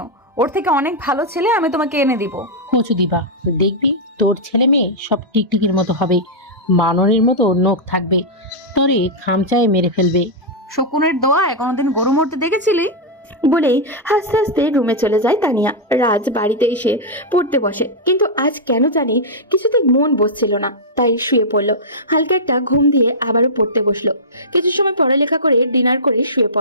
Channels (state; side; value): normal; both; correlation -0.07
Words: ওর থেকে অনেক ভালো ছেলে আমি তোমাকে এনে দিব। কচু দিবা, দেখবি তোর ছেলে মেয়ে সব টিকটিকির মতো হবে, বানরের মতো নখ থাকবে, তোরে খামচায় মেরে ফেলবে। শকুনের দোয়ায় কোনোদিন গরু মরতে দেখেছিলি? বলেই হাসতে হাসতে রুমে চলে যায় তানিয়া। রাজ বাড়িতে এসে পড়তে বসে, কিন্তু আজ কেন জানি কিছুতেই মন বসছিল না, তাই শুয়ে পড়লো। হালকা একটা ঘুম দিয়ে আবারও পড়তে বসলো। কিছু সময় পড়ালেখা করে ডিনার করে শুয়ে